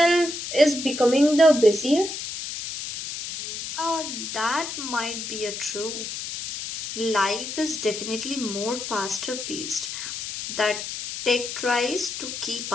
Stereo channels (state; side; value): noise; left; hiss, 6 dB below the sound